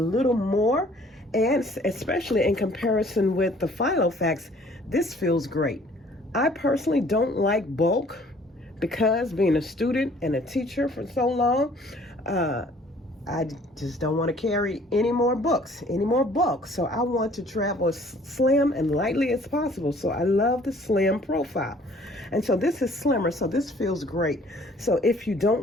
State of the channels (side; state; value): both; normal; correlation 0.56